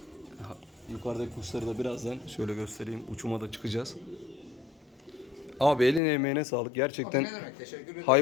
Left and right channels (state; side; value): drops out; right; at 6.0 s